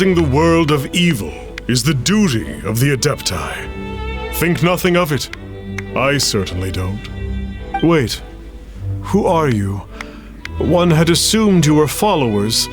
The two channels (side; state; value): both; identical; correlation 1.00